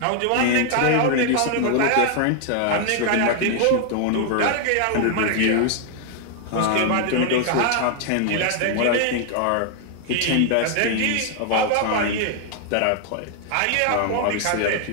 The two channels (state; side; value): different; both; correlation 0.00